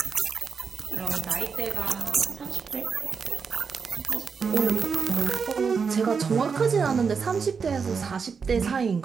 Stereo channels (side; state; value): left; quieter; 5.7 dB